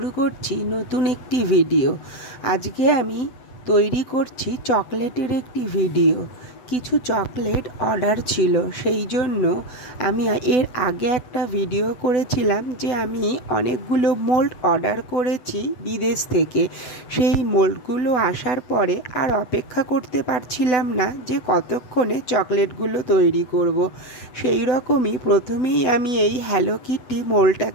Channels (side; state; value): right; late; 8.0 ms